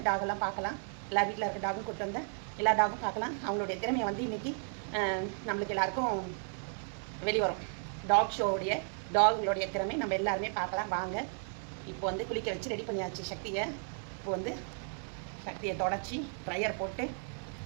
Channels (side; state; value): left; silent; 55 dB below the other